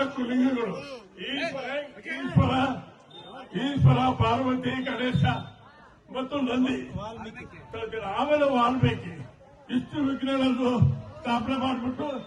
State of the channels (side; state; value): both; identical; correlation 1.00